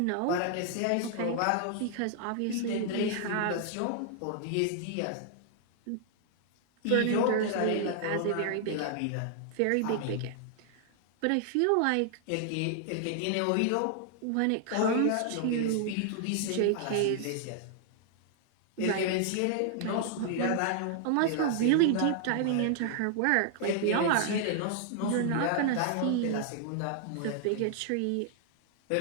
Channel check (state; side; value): different; both; correlation -0.01